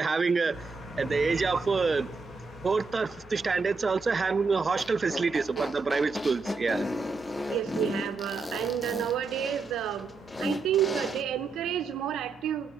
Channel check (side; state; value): left; quieter; 4.4 dB